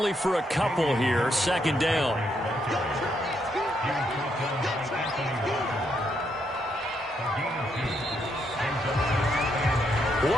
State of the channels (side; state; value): both; normal; correlation 0.77